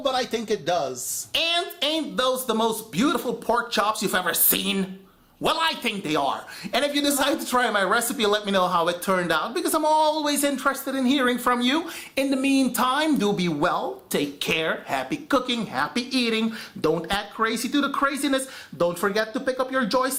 but I think it does. And ain't those the most beautiful pork chops you've ever seen? Well, I think they are. And if you decide to try my recipe, let me know how it turned out, because I'm always interested in hearing from you. In the meantime, do be well, take care, happy cooking, happy eating. Don't act crazy to the craziness. Don't forget to pick up your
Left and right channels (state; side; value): identical; both; correlation 1.00